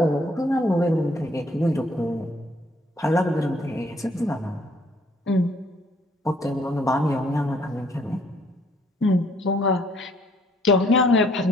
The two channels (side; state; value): both; normal; correlation 0.64